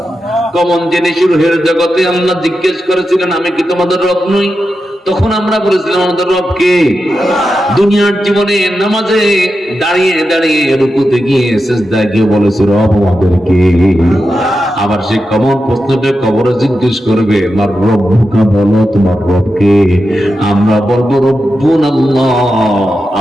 কমন জিনিস রুহের জগতে আল্লাহ জিজ্ঞেস করেছিলেন, আমি কি তোমাদের রব নই? তখন আমরা বলেছিলাম আমাদের রবকে। দুনিয়ার জীবনে নামাজে দাঁড়িয়ে দাঁড়িয়ে রুকুতে গিয়ে সিজদায় গিয়ে বলেছে রব আমাদেরকে। আবার সে কমন প্রশ্নটা কবরে জিজ্ঞেস করবে আমার রব্বুকা, বলো তোমার রবকে। আমরা বলবো রব্বুন আল্লাহ,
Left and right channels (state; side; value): normal; both; correlation 0.89